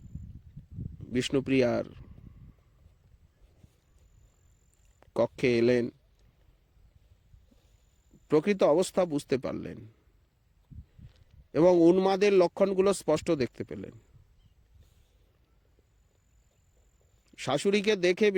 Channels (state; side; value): identical; both; correlation 1.00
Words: বিষ্ণুপ্রিয়ার কক্ষে এলেন। প্রকৃত অবস্থা বুঝতে পারলেন এবং উন্মাদের লক্ষণগুলো স্পষ্ট দেখতে পেলেন। শাশুড়িকে দেখে